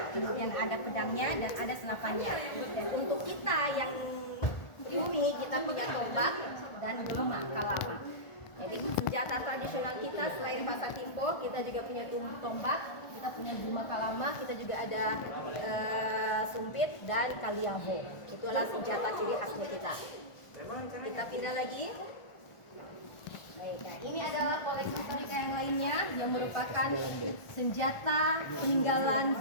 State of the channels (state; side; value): late; right; 1.4 ms